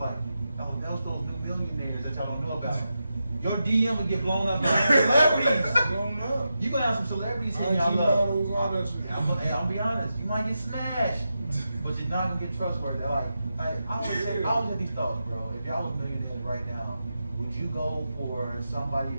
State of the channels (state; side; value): inverted; both; correlation -0.88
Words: oh, those new millionaires that y'all don't know about. Your DM will get blown up by celebrities. Blown up. You gonna have some celebrities in IG y'all models, all love. that shit. I'm be honest, you might get smashed, but you're not gonna get trustworthy. I always have these thoughts, bro. If y'all was millionaires right now, would you go for somebody